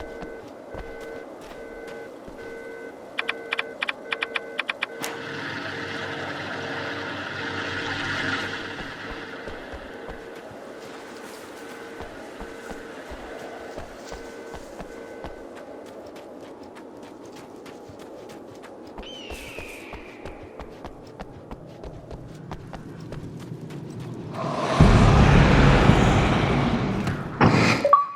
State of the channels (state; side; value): identical; both; correlation 1.00